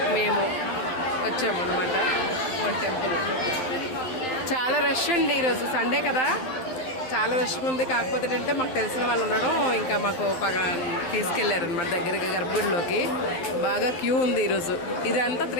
మేము వచ్చాము అనమాట టెంపుల్. చాలా రష్ అండి, ఈరోజు సండే కదా, చాలా రష్గా ఉంది. కాకపోతే ఏంటంటే మాకు తెలిసిన వాళ్ళు ఉండడం, ఇంకా మాకు తీసుకెళ్లారు అనమాట దగ్గరికి గర్భగుడిలోకి. బాగా క్యూ ఉంది ఈరోజు. ఇదంతా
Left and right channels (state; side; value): late; right; 12 ms